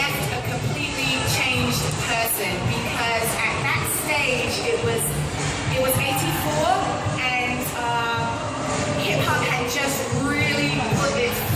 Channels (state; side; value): identical; both; correlation 1.00